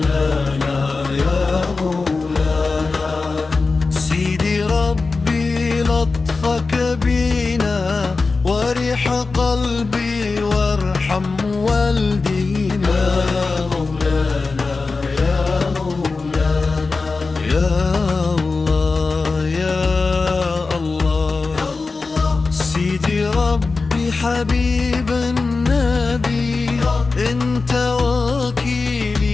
يا مولانا. سيدي ربي لطفك بينا وريح قلبي وارحم والدينا. حبيب النبي انت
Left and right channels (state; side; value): quieter; right; 4.0 dB